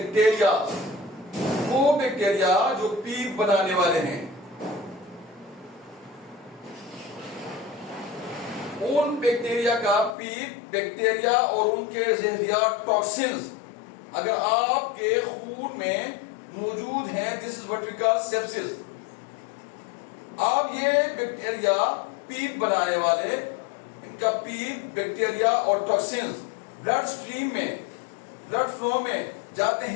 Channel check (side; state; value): right; drops out; at 10.2 s